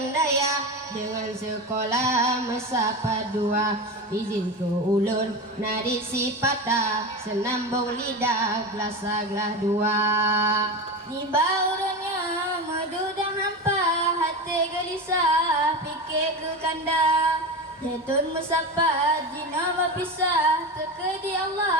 daya dengan sekolah mesapa dua. Izin ke ulun nadi sipata senambung lidah gelas dua. Di baurannya madu dan hampa, hati gelisah fikir ke kanda. Jatun musafat jina berpisah, terkedi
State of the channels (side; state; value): both; normal; correlation 0.23